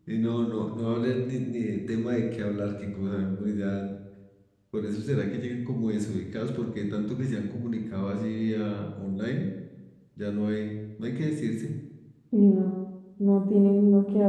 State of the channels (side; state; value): both; identical; correlation 1.00